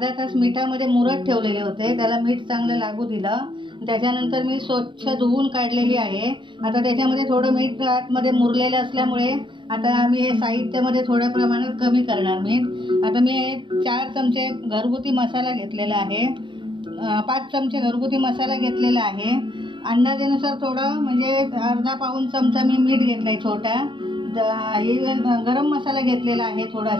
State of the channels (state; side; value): late; left; 0.23 ms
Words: तास मिठामध्ये मुरत ठेवलेले होते, त्याला मीठ चांगलं लागू दिलं। त्याच्यानंतर मी स्वच्छ धुवून काढलेली आहे। आता त्याच्यामध्ये थोडं मीठ आतमध्ये मुरलेलं असल्यामुळे आता आम्ही हे साहित्यामध्ये थोड्या प्रमाणात कमी करणार मीठ। आता मी 4 चमचे घरगुती मसाला घेतलेला आहे, 5 चमचे घरगुती मसाला घेतलेला आहे। अंदाजानुसार थोडं म्हणजे अर्धा पाऊण चमचा मी मीठ घेतलाय छोटा। गरम मसाला घेतलेला आहे,